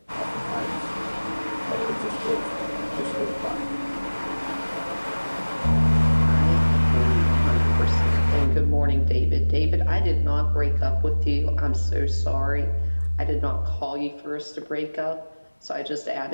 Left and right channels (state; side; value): inverted; both; correlation -1.00